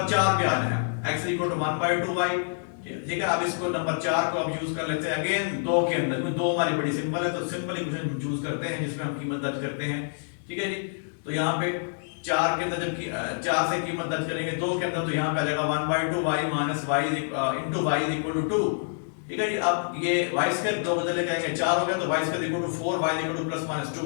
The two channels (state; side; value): silent; right; digital silence